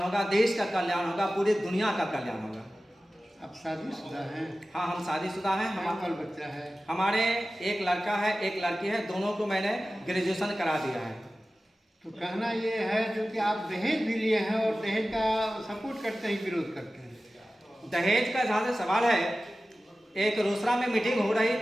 देश का कल्याण होगा, पूरी दुनिया का कल्याण होगा। आप शादीशुदा हैं? हाँ, हम शादीशुदा हैं। हमारा बच्चा है? हमारे एक लड़का है, एक लड़की है। दोनों को मैंने ग्रेजुएशन करा दिया है। तो कहना ये है जो कि आप दहेज भी लिए हैं और दहेज का सपोर्ट करते हैं, विरोध करते हैं? दहेज का जहाँ से सवाल है, एक रोसड़ा में मीटिंग हो रही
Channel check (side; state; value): both; normal; correlation 0.95